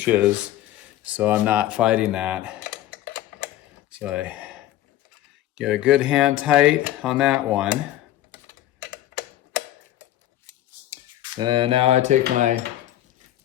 is, so I'm not fighting that. So I get a good hand tight on that one. And now I take my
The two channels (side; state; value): right; quieter; 13.3 dB